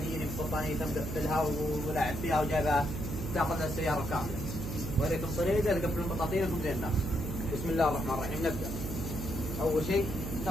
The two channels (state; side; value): noise; right; hum, 5 dB below the sound